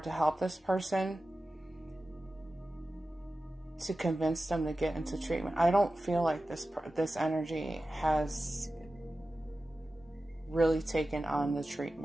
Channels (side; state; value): both; normal; correlation 0.94